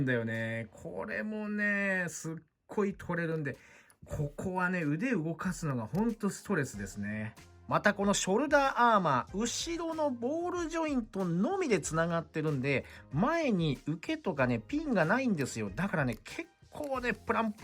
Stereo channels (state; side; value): identical; both; correlation 1.00